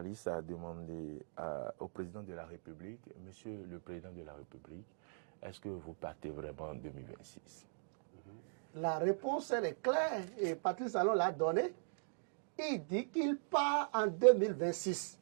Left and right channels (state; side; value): silent; left; digital silence